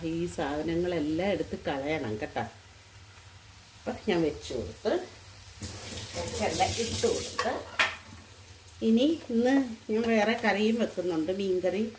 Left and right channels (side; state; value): both; identical; correlation 1.00